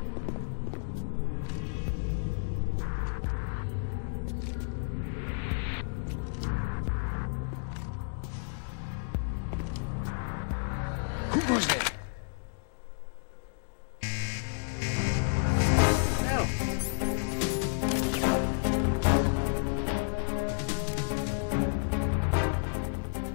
Who goes there?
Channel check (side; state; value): right; silent; digital silence